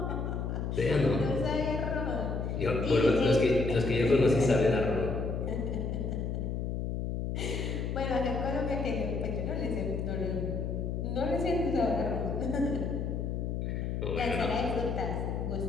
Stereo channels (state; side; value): noise; left; hum, 2 dB below the sound